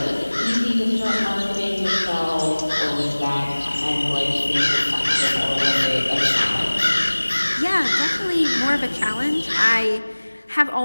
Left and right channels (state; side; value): inverted; both; correlation -1.00